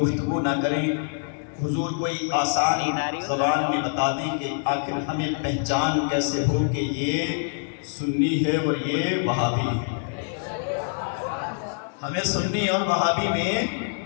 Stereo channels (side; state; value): right; silent; digital silence